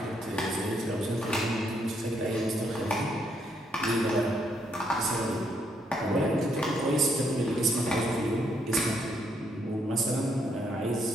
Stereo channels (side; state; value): both; normal; correlation 0.73